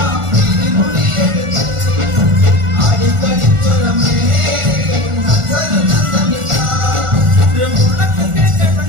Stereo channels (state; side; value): late; left; 1.4 ms